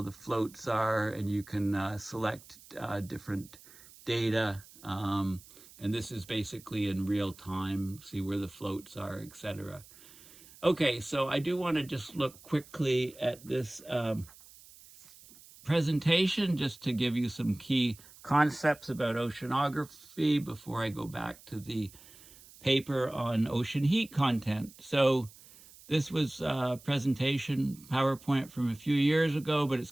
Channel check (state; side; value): noise; right; hiss, 22 dB below the sound